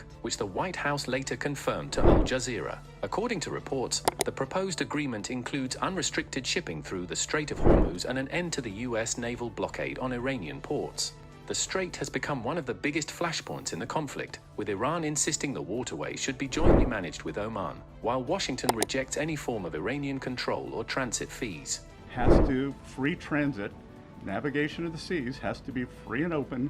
which the White House later confirmed to Al Jazeera. According to reports, the proposed agreement includes unrestricted shipping through the Strait of Hormuz and an end to the US naval blockade on Iranian ports. The strait has become one of the biggest flashpoints in the conflict, with Iran insisting the waterway should be jointly managed with Oman, while Washington rejects any form of Iranian control or transit fees. Free transit, navigation of the seas has to be free and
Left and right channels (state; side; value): identical; both; correlation 1.00